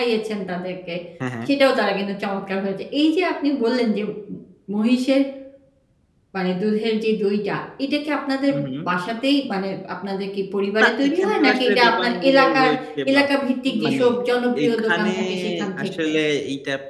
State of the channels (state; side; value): identical; both; correlation 1.00